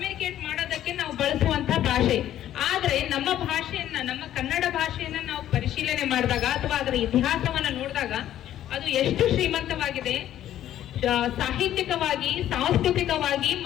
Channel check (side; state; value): right; quieter; 11.9 dB